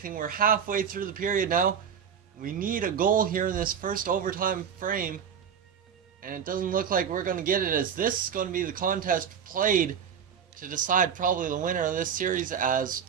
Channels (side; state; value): left; quieter; 7.8 dB